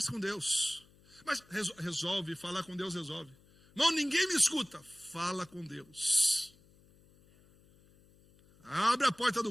com Deus. Mas resolve, falar com Deus resolve. Não, ninguém me escuta. Fala com Deus. Abre a porta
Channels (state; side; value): noise; left; hum, 28 dB below the sound